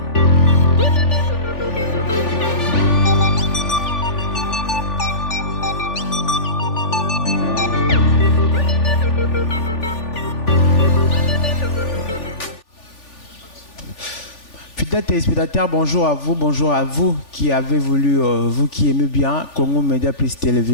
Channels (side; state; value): right; late; 3.4 ms